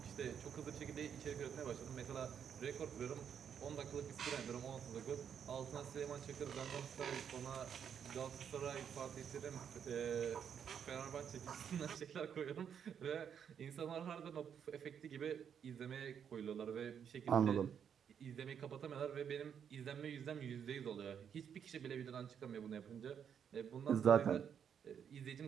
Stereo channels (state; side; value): quieter; left; 8.0 dB